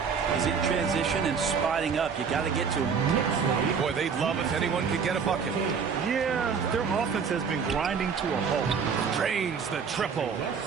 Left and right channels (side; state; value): left; quieter; 6.2 dB